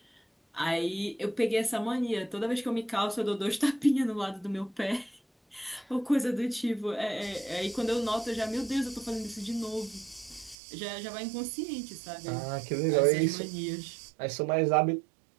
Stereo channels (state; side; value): drops out; left; at 10.6 s